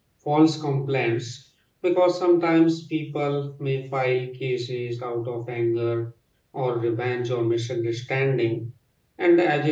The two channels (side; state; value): both; identical; correlation 1.00